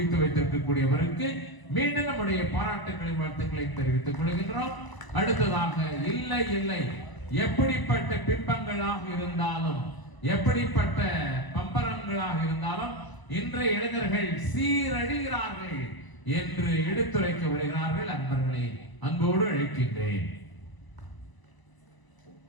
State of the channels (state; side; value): late; right; 1.0 ms